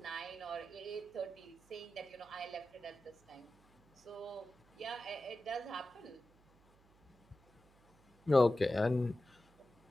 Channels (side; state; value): right; noise; hum, 29 dB below the sound